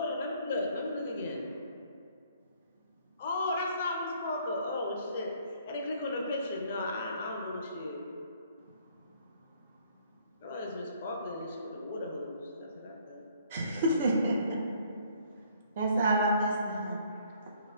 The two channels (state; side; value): inverted; both; correlation -0.62